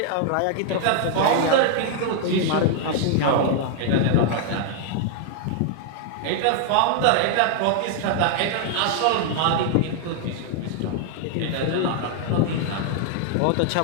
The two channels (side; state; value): both; different; correlation 0.00